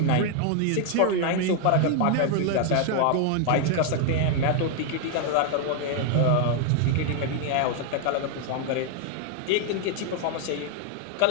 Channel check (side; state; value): both; different; correlation 0.00